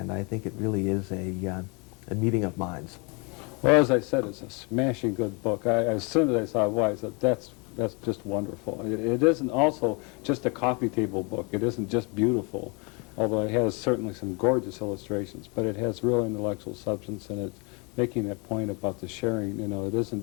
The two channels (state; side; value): quieter; right; 31.4 dB